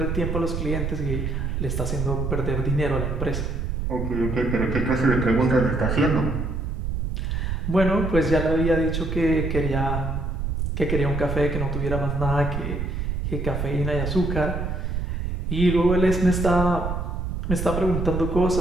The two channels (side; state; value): right; noise; rumble, 2 dB below the sound